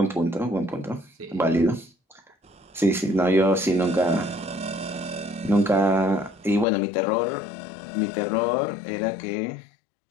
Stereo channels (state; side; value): drops out; right; at 6.7 s